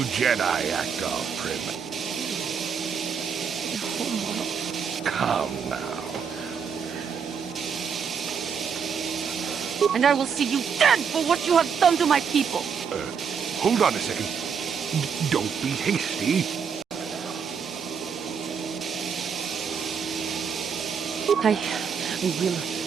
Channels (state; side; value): quieter; left; 6.6 dB